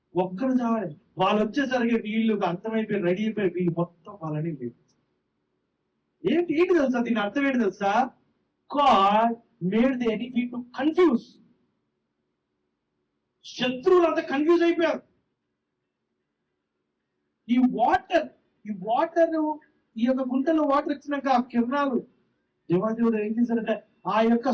చావాలి. వాళ్ళు వచ్చేసరికి వీళ్ళు అర్థమైపోయి రెడీ అయిపోయి వీళ్ళు మొత్తం వాళ్ళని లేదు. ఏంటి తెలుసా? దీని అర్థం ఏంటి తెలుసా? God made the enemy to confuse. శత్రువులంతా కన్ఫ్యూజ్ అయిపోయారు. ఈ వాటర్ ఈ యొక్క గుంటలో వాటర్ ఇచ్చినాక ఆ కిరణాలు దేవాదేవుడు ఏం చేశారంటే ఆ యొక్క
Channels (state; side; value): identical; both; correlation 1.00